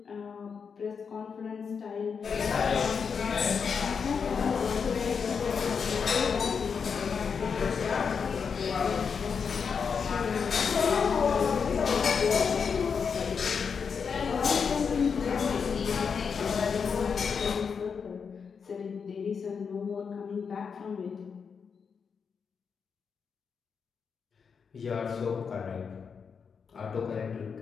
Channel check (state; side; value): quieter; right; 6.1 dB